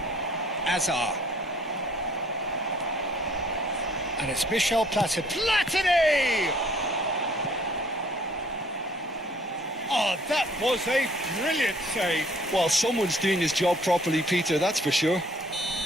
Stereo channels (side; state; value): both; normal; correlation 0.59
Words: Azar. And it's Michel Platini! Oh, that was a brilliant save. Well, someone's doing his job properly, Peter, that's for sure.